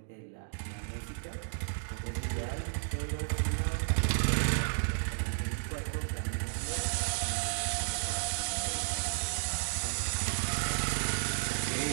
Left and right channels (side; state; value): left; silent; digital silence